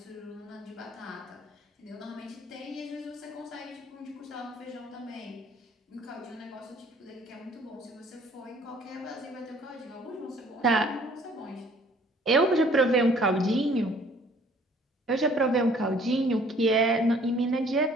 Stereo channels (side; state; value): both; normal; correlation 0.57